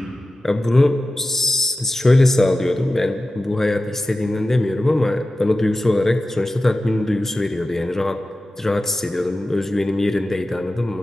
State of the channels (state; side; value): normal; both; correlation 0.94